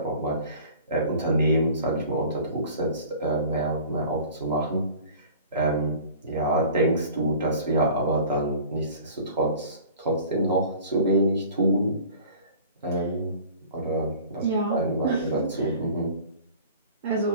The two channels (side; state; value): both; inverted; correlation -0.44